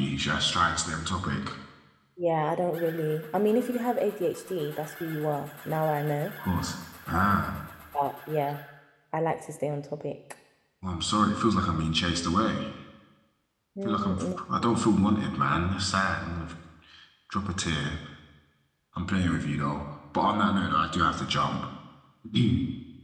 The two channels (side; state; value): both; identical; correlation 1.00